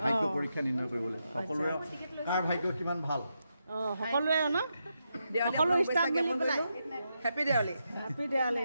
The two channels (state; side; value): inverted; both; correlation -0.84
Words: ভাগ্য পৰীক্ষা নিৰ্ণয় কৰিবলৈ সকলোৰে কাৰ ভাগ্য কিমান ভাল সকলোৱে ন সকলো ষ্টাফ মিলি পেলাই happy Diwali happy Diwali